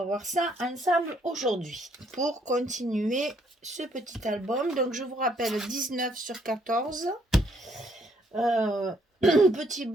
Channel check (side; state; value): both; normal; correlation 0.69